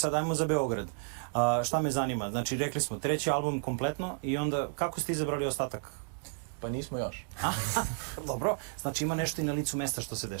ajmo za Beograd. Šta me zanima? Znači, rekli smo treći album kompletno i onda kako ste izabrali ostatak Pa nismo još. Dobro, znači ima nešto i na licu mesta što se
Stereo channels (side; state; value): left; silent; 56 dB below the other